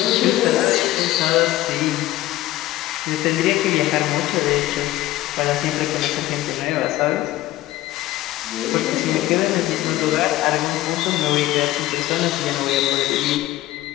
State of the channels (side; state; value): right; quieter; 15.8 dB